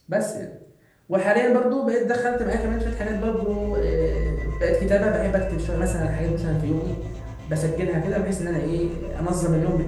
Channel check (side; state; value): both; identical; correlation 1.00